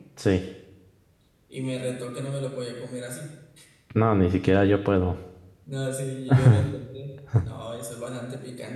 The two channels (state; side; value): identical; both; correlation 1.00